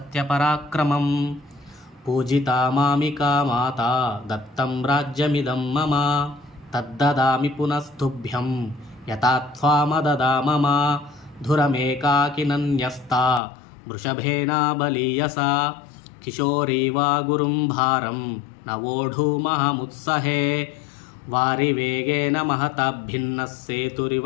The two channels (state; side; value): drops out; right; at 13.4 s